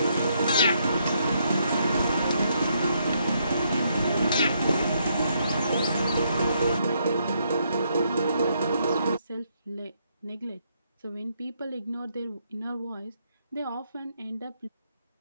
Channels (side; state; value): both; inverted; correlation -0.74